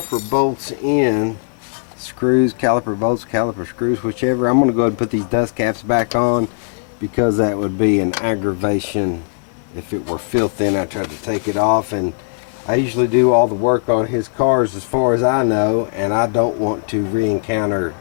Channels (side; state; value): right; silent; 67 dB below the other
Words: bolts in. Screws, caliper bolts, caliper screws, whichever. I'm going to go ahead and put these dust caps back on because that would be an aggravation if it were filthy and I tried to take it off. And I usually do all the work on his cars as far as I know, and I don't want to re-encounter